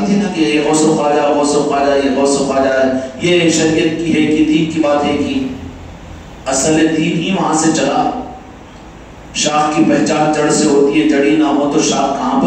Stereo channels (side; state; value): both; identical; correlation 1.00